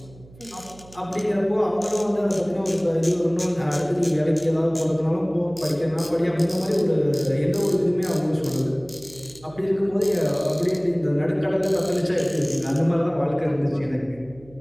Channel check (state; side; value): noise; right; hum, 23 dB below the sound